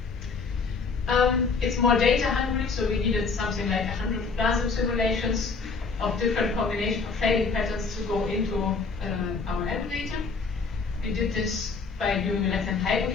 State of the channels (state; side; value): quieter; right; 4.6 dB